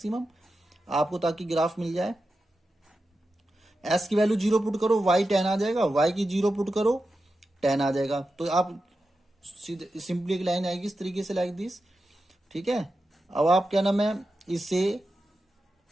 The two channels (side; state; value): both; normal; correlation 0.91